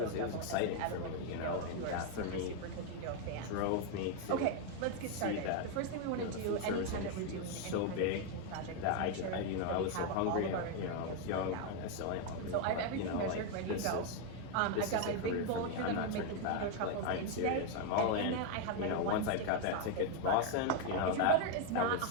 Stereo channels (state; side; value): different; both; correlation 0.01